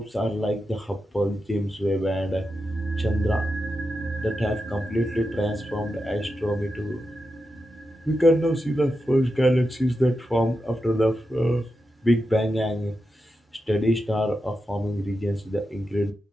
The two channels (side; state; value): both; normal; correlation 0.89